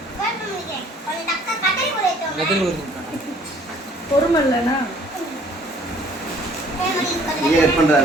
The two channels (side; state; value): both; normal; correlation 0.57